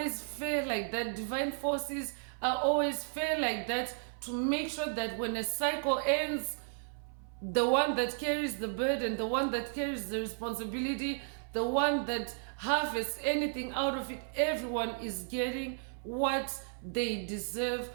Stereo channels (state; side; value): silent; left; 55 dB below the other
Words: fair like that. Divine forces are always fair like that, to make sure that when a cycle ends, the one that carries the burden, the one that carries the responsibility, the one that harvests anything out of it, everyone is getting what they deserve